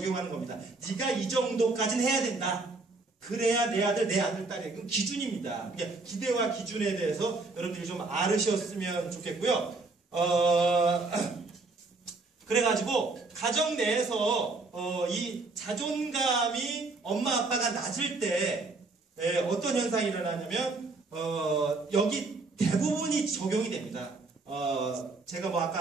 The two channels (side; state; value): left; quieter; 3.6 dB